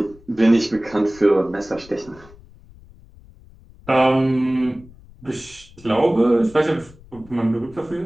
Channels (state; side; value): noise; left; rumble, 23 dB below the sound